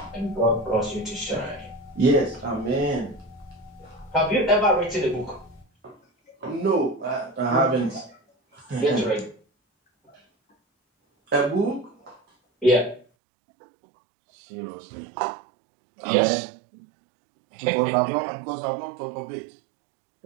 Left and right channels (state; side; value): drops out; left; at 13.1 s